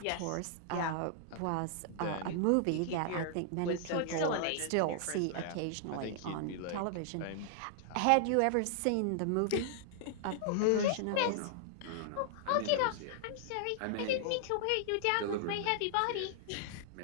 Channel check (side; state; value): both; different; correlation -0.01